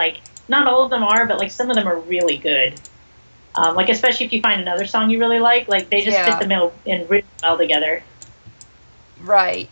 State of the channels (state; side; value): inverted; both; correlation -1.00